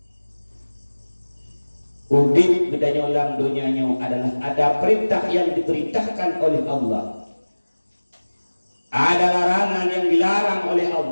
Udip Gedanyo dalam dunianya adalah ada perintah yang diperintahkan oleh Allah. Ada larangan yang dilarang oleh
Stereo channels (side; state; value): both; inverted; correlation -1.00